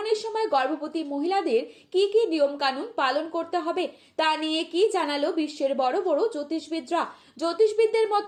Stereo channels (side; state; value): both; identical; correlation 1.00